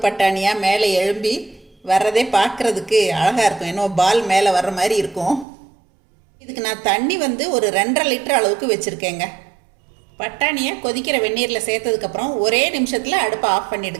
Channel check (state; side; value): drops out; left; at 5.5 s